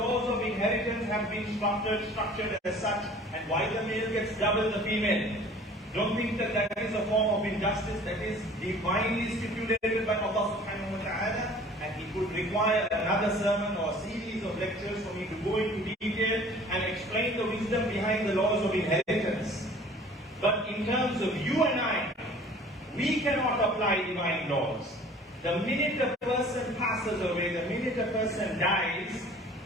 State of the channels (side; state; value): both; normal; correlation 0.48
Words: of inheritance have been structured as such, and why the male gets double the female. Don't think that that is a form of injustice. That is divinely stipulated by Allah subhanahu wa ta'ala, and it would require another sermon or a series of lectures for me to go into detail and explain the wisdom behind the laws of inheritance. But in terms of you and I, we cannot apply divine laws. The minute a person passes away, the minute a person dies,